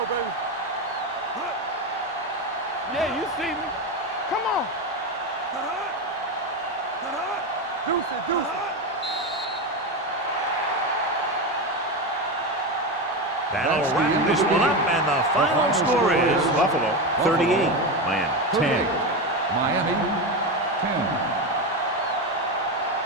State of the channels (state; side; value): normal; both; correlation 0.16